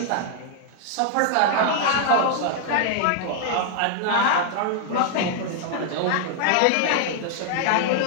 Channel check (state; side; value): different; both; correlation 0.00